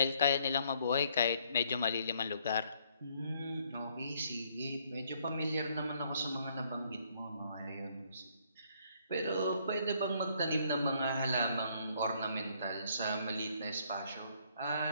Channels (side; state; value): both; inverted; correlation -0.67